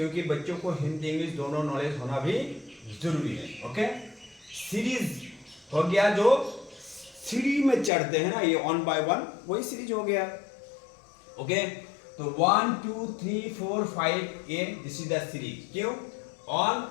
बच्चों को हिंदी इंग्लिश दोनों नॉलेज होना भी जरूरी है। ओके, सीरीज हो गया, जो सीढ़ी में चढ़ते हैं ना, ये 1 by 1 वही सीरीज हो गया। ओके, तो 1 2 3 4 5 ये दिस इज द सीरीज। क्यों? 1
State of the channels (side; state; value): right; drops out; at 7.9 s